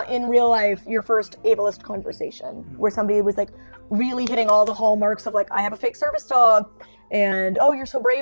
in real life your first ableist conversation where somebody was like really hitting all the hallmarks of like, I have a fake service dog, and oh, you're so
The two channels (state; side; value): inverted; both; correlation -1.00